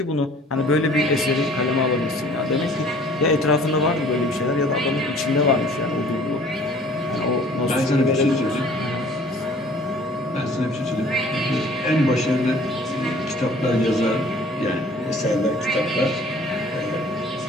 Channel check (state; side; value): normal; both; correlation 0.52